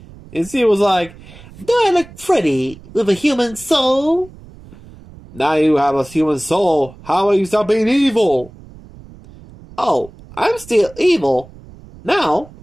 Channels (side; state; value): right; noise; rumble, 20 dB below the sound